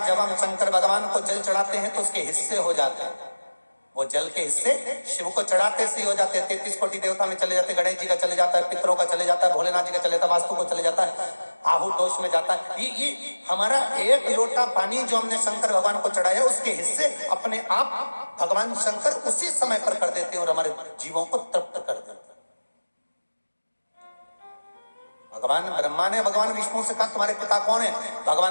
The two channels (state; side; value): inverted; both; correlation -1.00